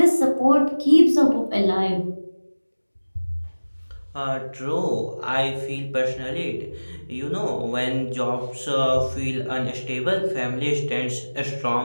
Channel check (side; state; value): both; inverted; correlation -1.00